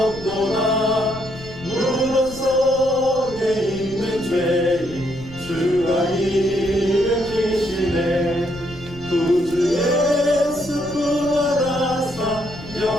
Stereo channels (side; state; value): left; noise; rumble, 17 dB below the sound